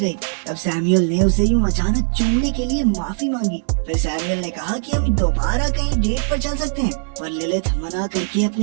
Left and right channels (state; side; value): silent; left; 66 dB below the other